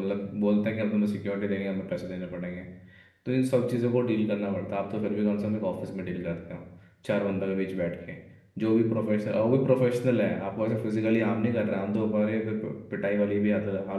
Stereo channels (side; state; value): both; identical; correlation 1.00